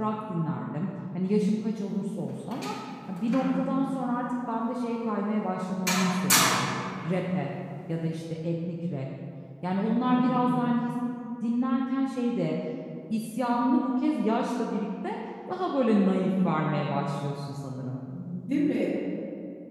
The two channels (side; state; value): both; identical; correlation 1.00